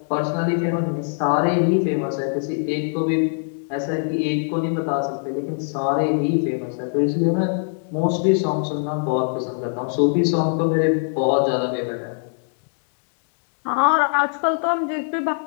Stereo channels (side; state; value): right; silent; digital silence